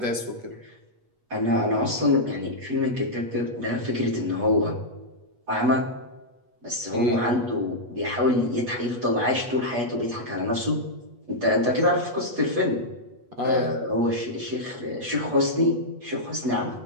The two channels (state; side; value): late; left; 8.2 ms